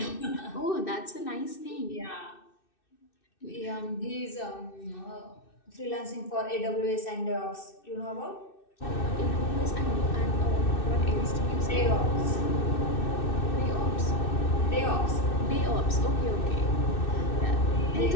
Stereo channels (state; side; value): late; right; 2.6 ms